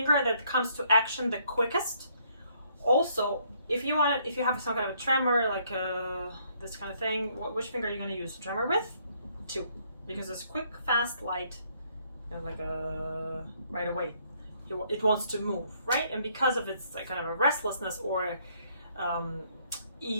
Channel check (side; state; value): both; inverted; correlation -0.68